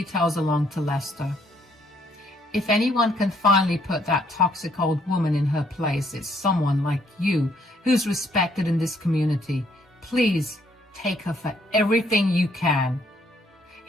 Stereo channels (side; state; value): both; normal; correlation 0.68